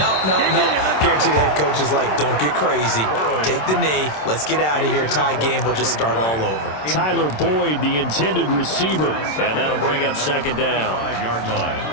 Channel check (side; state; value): right; late; 27 ms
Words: Guaranteed the head coach is like, don't get crazy. Take the knee. Let's get out of here. Tie game will just start all over. Tyler Boyd, the intended receiver. And that'll bring up 2nd down. 5-yard line.